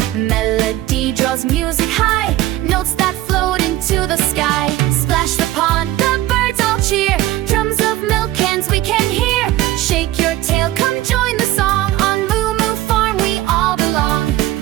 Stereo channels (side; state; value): left; quieter; 15.4 dB